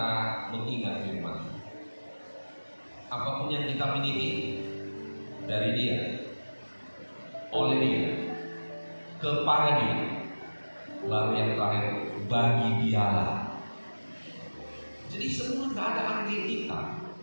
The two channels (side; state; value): both; inverted; correlation -1.00